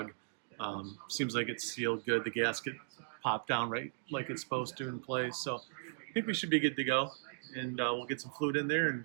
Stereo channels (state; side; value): silent; left; digital silence